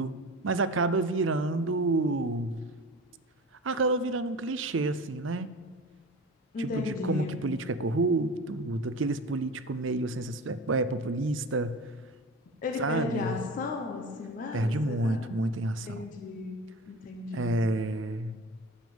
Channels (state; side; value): normal; both; correlation 0.34